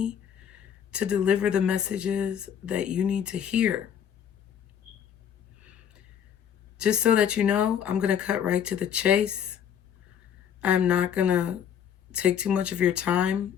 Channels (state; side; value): quieter; right; 8.8 dB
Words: to deliver the messages that you need to hear. Just so that you know, I'm going to cut right to the chase. I'm not going to take too much of your time